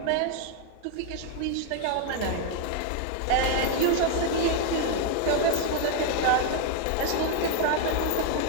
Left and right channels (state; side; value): different; both; correlation 0.01